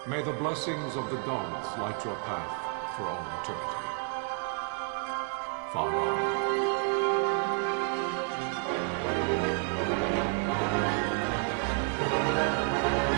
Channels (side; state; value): left; quieter; 38.9 dB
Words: May the blessings of the gods light your path for all eternity. Far on.